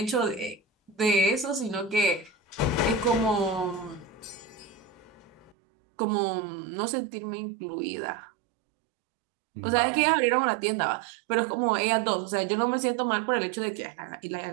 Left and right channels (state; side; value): drops out; left; at 5.6 s